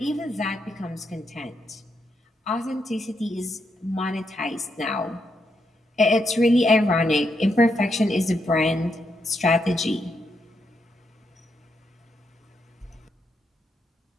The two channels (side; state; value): both; normal; correlation 0.80